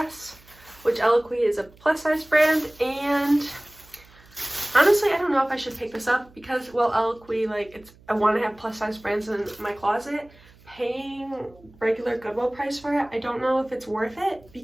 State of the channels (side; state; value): right; noise; hum, 26 dB below the sound